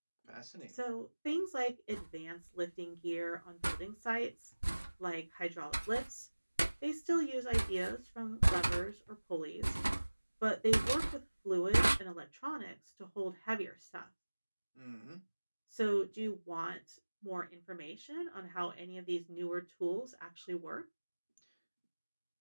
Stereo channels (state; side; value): inverted; both; correlation -1.00